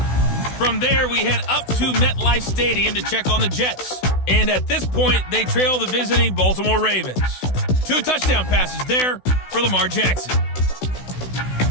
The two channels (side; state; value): right; late; 16 ms